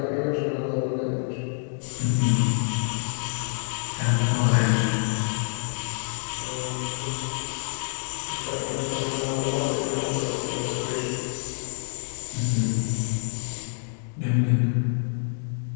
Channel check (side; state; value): right; silent; digital silence